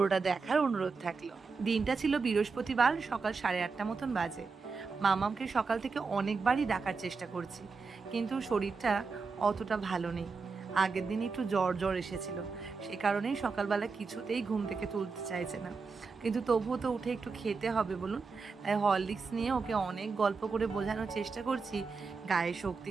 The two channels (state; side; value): quieter; left; 4.7 dB